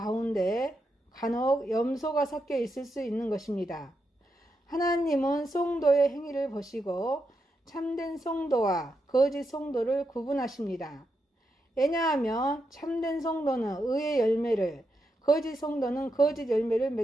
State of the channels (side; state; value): both; normal; correlation 0.84